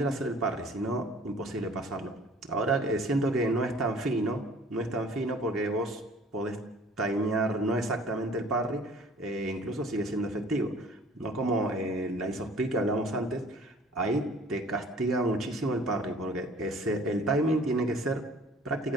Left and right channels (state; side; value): normal; both; correlation 0.51